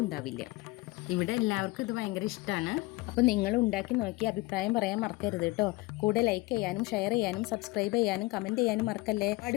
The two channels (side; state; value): right; quieter; 21.7 dB